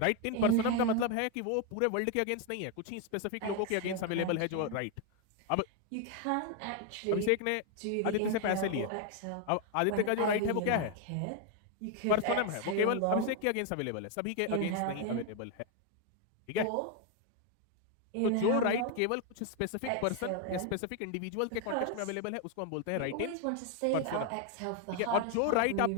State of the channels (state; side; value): different; both; correlation 0.01